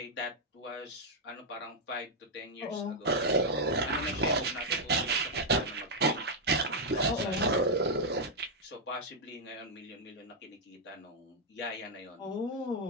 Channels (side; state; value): both; normal; correlation -0.02